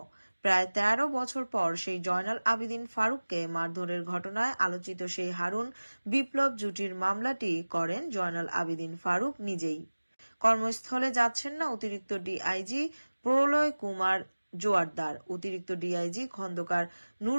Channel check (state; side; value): inverted; both; correlation -1.00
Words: প্রায় ১৩ বছর পর সেই জয়নাল আবেদিন ফারুককে মারধরের ঘটনায় আলোচিত সেই হারুন বিপ্লব জুটির মামলাটি করেন জয়নাল আবেদিন ফারুক নিজেই। কর্মস্থলে যাচ্ছেন না অতিরিক্ত ডিআইজি প্রলয় কুমার জোয়ারদার, অতিরিক্ত ডিআইজি খন্দকার